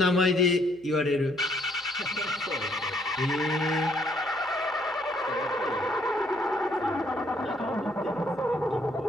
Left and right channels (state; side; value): noise; right; hum, 29 dB below the sound